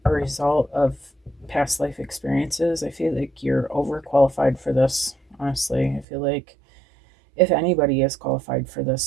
a result of past life experiences. I feel like you're overqualified for this. Honestly, I feel like if anybody is qualified for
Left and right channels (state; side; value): drops out; left; at 6.1 s